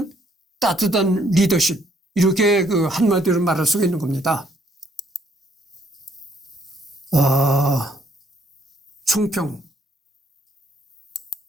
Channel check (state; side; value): normal; both; correlation 0.68